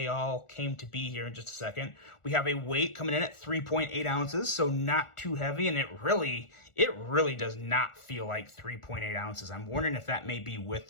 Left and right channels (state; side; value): late; right; 1.4 ms